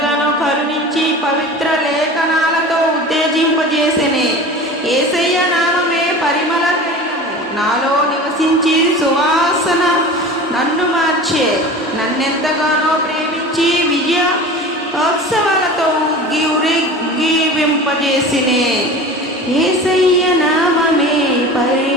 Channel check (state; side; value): normal; both; correlation 0.36